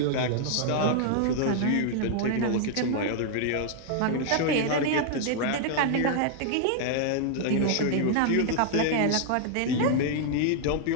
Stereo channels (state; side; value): different; both; correlation 0.00